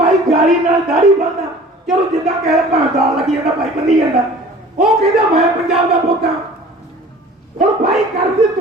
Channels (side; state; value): both; normal; correlation 0.45